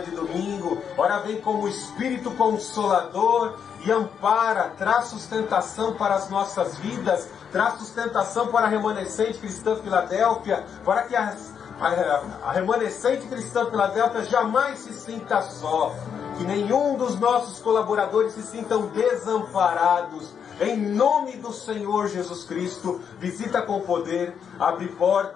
de domingo. Ora, vem como Espírito Consolador e ampara, traz sustentação para as nossas vidas, traz sustentação para a remanescente cristã Filadélfia, para que a remanescente cristã Filadélfia jamais se sinta só, que nenhum dos nossos colaboradores se sintam desamparados. Em nome do Senhor Jesus Cristo, visita com poder, abre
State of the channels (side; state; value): right; quieter; 7.5 dB